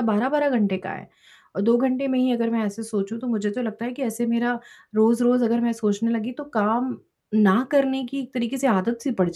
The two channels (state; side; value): identical; both; correlation 1.00